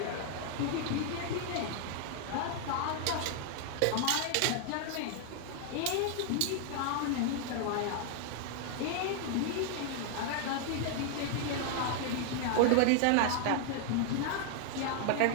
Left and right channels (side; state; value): both; different; correlation 0.00